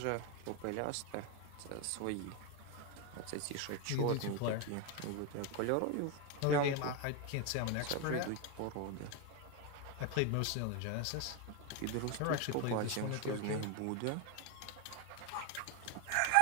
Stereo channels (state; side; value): different; both; correlation 0.02